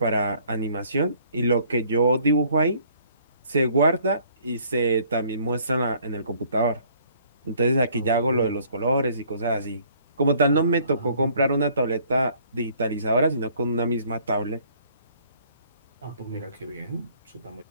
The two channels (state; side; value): inverted; both; correlation -0.59